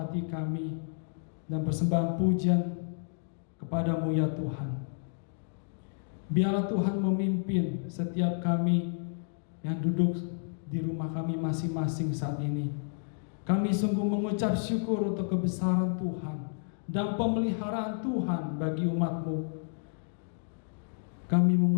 kami dan persembahan pujian kepada-Mu ya Tuhan. Biarlah Tuhan memimpin setiap kami yang duduk di rumah kami masing-masing saat ini. Kami sungguh mengucap syukur untuk kebesaran Tuhan dan pemeliharaan Tuhan bagi umat-Mu. Kami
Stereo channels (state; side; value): silent; right; digital silence